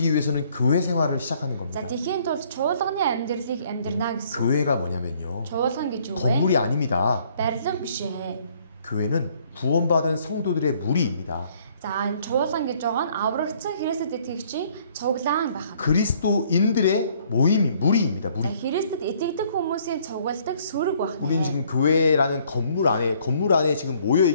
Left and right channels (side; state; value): both; inverted; correlation -0.62